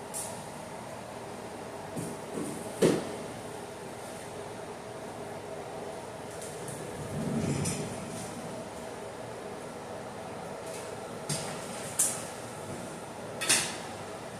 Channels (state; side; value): identical; both; correlation 1.00